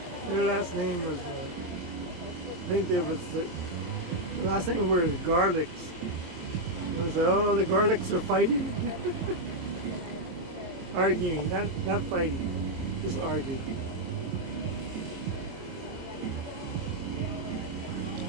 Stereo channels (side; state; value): left; late; 23 ms